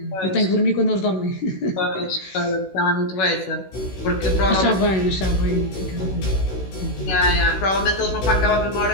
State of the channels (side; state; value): right; late; 16 ms